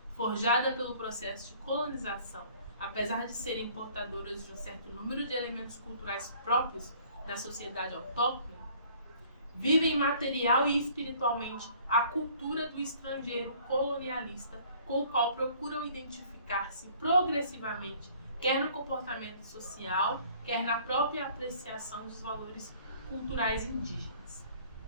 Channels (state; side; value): inverted; both; correlation -0.55